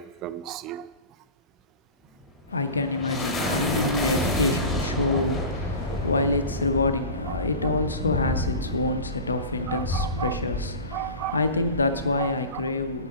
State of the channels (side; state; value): both; inverted; correlation -0.33